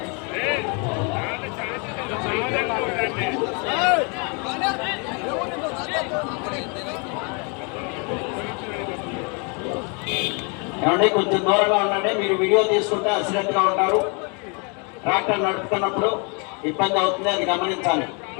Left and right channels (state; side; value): quieter; right; 34.2 dB